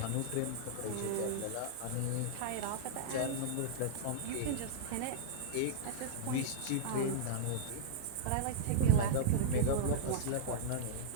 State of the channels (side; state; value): both; different; correlation -0.02